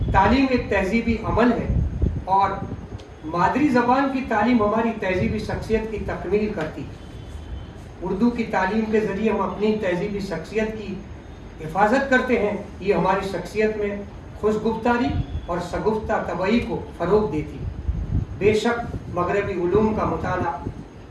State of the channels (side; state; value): both; identical; correlation 1.00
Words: تعلیم ایک تہذیبی عمل ہے اور مادری زبان کی تعلیم ہماری تہذیبی شخصیت کی تکمیل کرتی ہے۔ اردو کی تعلیم کے ذریعے ہم اپنی تہذیبی شخصیت کی حفاظت کرتے ہیں۔ یہ ہماری شخصیت میں خوشگفتاری اور شگفتہ طبعی کو فروغ دیتی ہے۔ بے شک مغربی علوم کا مطالعہ